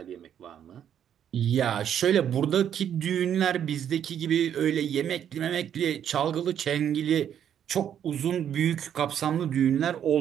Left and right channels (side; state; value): left; quieter; 9.4 dB